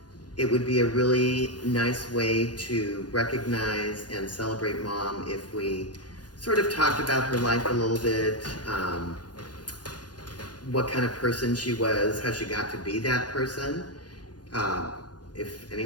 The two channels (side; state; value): right; late; 0.69 ms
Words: it would be a really nice way to recognize and celebrate Mom if we sort of talked about her life a little bit, what kind of person she was, how she got to be that person, if